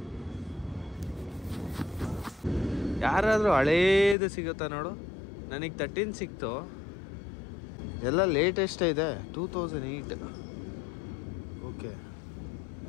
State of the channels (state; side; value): drops out; right; at 4.2 s